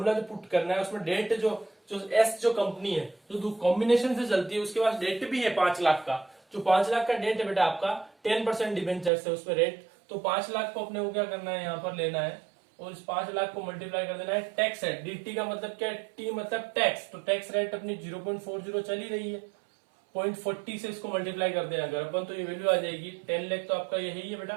जो पुट करना है उसमें डेट जो एस जो कंपनी है जो कॉम्बिनेशन से चलती है उसके पास डेट भी है 5 लाख का। जो 5 लाख का डेट है बेटा आपका 10% डिबेंचर है उसमें रेट, तो 5 लाख को अपने को क्या करना है यहाँ पर लेना है और इस 5 लाख को मल्टीप्लाई कर देना है टैक्स रेट। dt का मतलब क्या है, टी मतलब टैक्स, तो टैक्स रेट अपनी 0.40 चल ही रही है, 0.40 से इसको मल्टीप्लाई कर देना अगर अपन, तो ये वैल्यू आ जाएगी 10 लाख। तो आपका यही है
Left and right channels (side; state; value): left; drops out; at 9.1 s